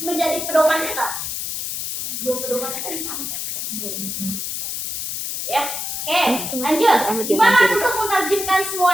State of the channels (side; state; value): left; noise; hiss, 4 dB below the sound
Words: menjadi pedoman kita? Pedoman kita di sana. Ya, oke, lanjut. Gimana untuk menerjemahkan semua